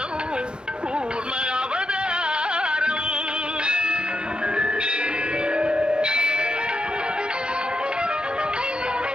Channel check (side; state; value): left; late; 0.049 ms